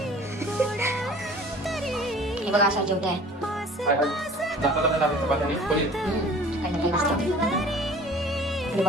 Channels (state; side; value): normal; both; correlation 0.48